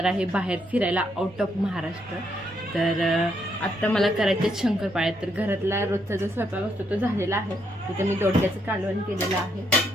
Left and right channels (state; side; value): normal; both; correlation 0.75